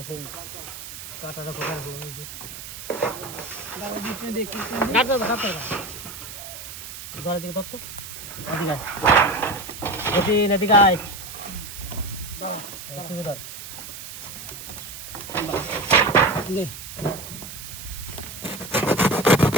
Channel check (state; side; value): noise; right; hiss, 11 dB below the sound